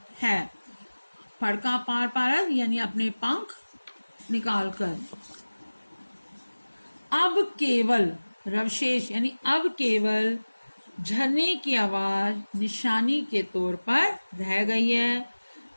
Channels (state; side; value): inverted; both; correlation -1.00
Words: है। फड़का पार पारद यानी अपने पंख निकालकर। अब केवल रवशेष यानी अब केवल झरने की आवाज निशानी के तौर पर रह गई है,